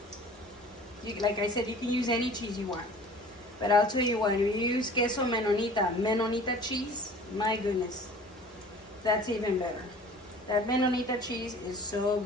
like I said, you can use any cheese you want. But I'll tell you what, if you use queso menonita cheese, my goodness, that's even better. That menonita cheese is so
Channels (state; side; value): normal; both; correlation 0.45